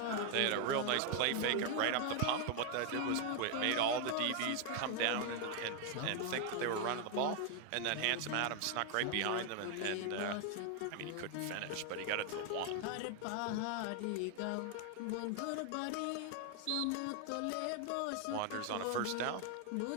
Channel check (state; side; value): different; both; correlation 0.01